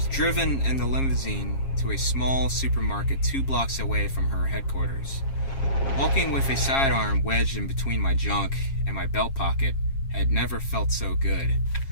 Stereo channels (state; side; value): late; right; 7.4 ms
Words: driven in the limousine to a small supermarket 2 blocks away from her headquarters. Walking with a sidearm wedged in between my junk and my belt pocket had never felt so good.